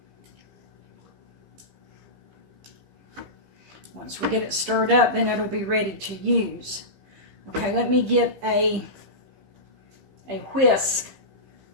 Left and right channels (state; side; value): late; left; 15 ms